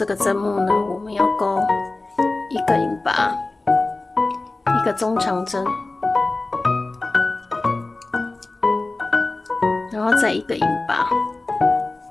个针目呢，我们要钩一个引拔，一个中长针，然后再一个引拔。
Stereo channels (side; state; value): right; quieter; 3.2 dB